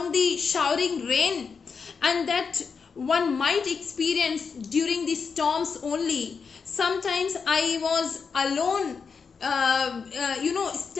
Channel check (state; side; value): quieter; right; 5.6 dB